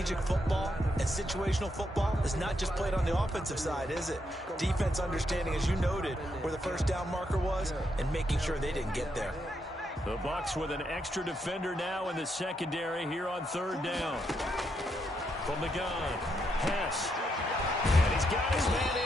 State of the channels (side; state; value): both; normal; correlation 0.79